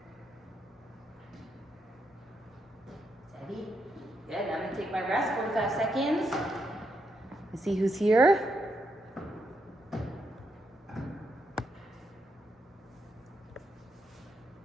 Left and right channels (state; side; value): normal; both; correlation 0.81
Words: Steady. Good, I'm going to take my rest, 45 seconds. Let's see who's here.